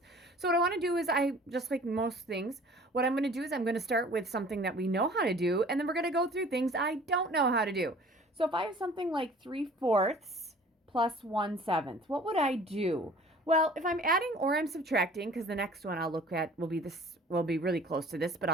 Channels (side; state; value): both; normal; correlation 0.49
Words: So what I want to do is just like most things, what I'm going to do is I'm going to start with something that we know how to do, and then we're going to go through things I don't know how to do. So if I have something like 3/4 plus 1/7, what would I do? Well, if I'm adding or I'm subtracting, because the next one I'll look at will be really close to this, but